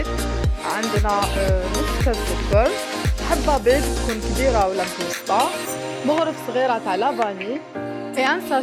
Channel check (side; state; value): both; identical; correlation 1.00